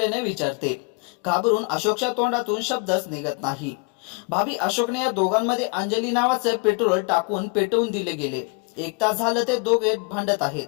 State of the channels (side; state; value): right; quieter; 33.0 dB